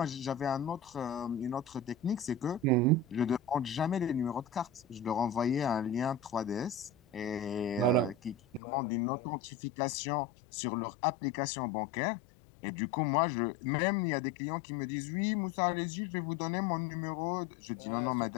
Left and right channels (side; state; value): right; drops out; at 8.6 s